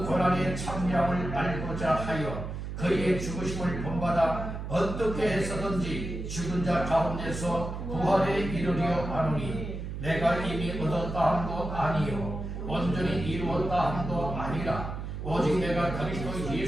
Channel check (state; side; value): noise; right; hum, 6 dB below the sound